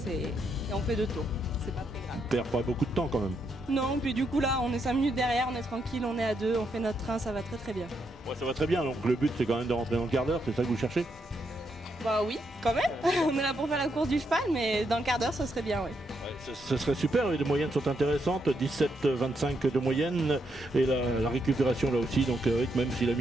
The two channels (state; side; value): normal; both; correlation 0.79